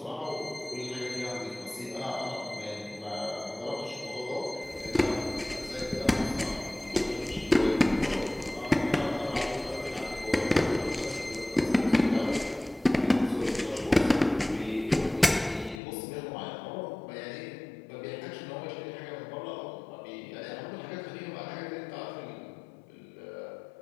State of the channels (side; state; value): right; drops out; at 15.8 s